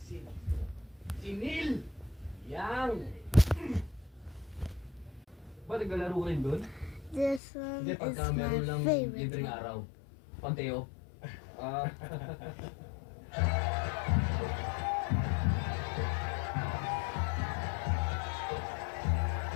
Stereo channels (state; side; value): drops out; right; at 7.4 s